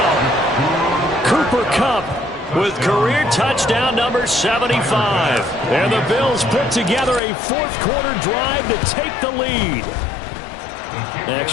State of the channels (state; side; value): drops out; right; at 7.2 s